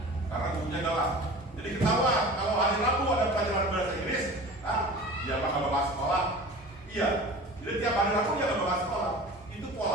karena gurunya galak. Jadi ketawa kalau hari Rabu ada pelajaran bahasa Inggris, dia bakal bakal sekolah. Iya, jadi tiap hari Rabu dia nggak bakal sekolah. Itu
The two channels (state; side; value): normal; both; correlation 0.38